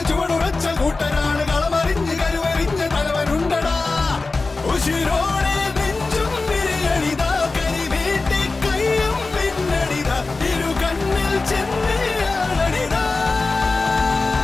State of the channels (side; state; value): right; quieter; 3.7 dB